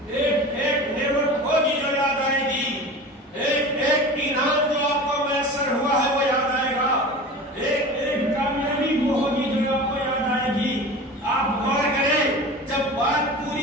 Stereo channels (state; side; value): normal; both; correlation 0.34